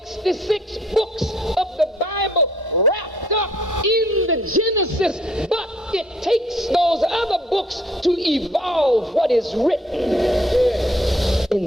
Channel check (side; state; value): both; normal; correlation 0.63